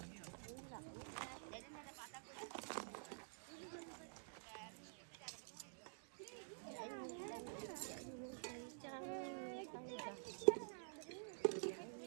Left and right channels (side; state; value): left; silent; digital silence